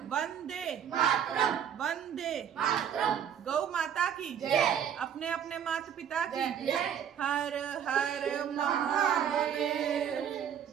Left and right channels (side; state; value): left; quieter; 8.8 dB